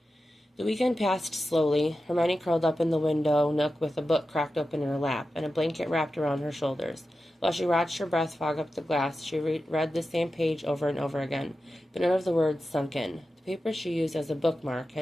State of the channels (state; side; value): normal; both; correlation 0.92